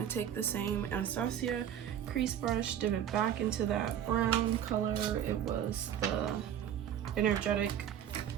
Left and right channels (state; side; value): quieter; left; 10.0 dB